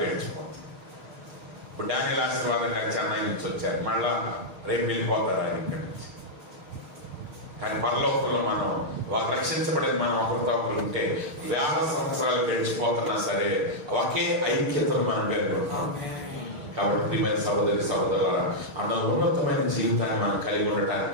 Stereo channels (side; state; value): left; late; 6.5 ms